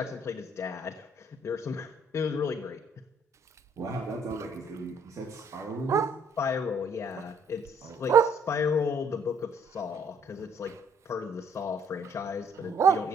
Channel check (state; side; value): normal; both; correlation 0.64